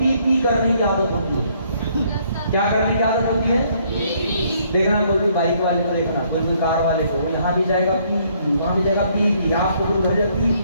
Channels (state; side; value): inverted; both; correlation -0.66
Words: पी करने की आदत होती है। क्या करने की आदत होती है? देखना, कोई भी बाइक वाले को देखना, कोई कार वाले को, वो यहाँ भी जाएगा पी पी, वहाँ भी जाएगा पी पी, आपको कोई घर जाएगा पी